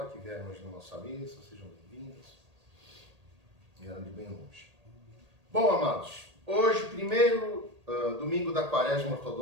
que vieram hoje na nossa missa. Sejam bem-vindas. Vieram de bem longe. Bom, amados, hoje, primeiro domingo da Quaresma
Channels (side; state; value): left; late; 1.8 ms